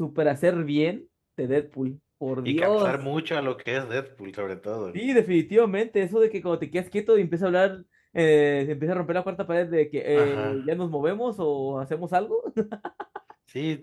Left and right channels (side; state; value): both; identical; correlation 1.00